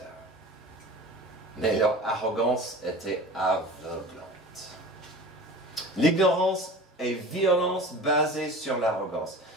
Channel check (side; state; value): both; normal; correlation 0.37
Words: Mais leur arrogance était aveuglante. L'ignorance et violence basée sur l'arrogance.